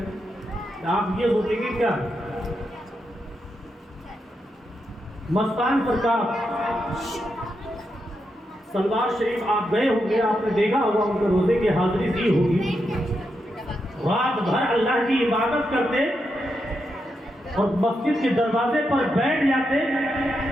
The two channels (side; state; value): both; normal; correlation 0.84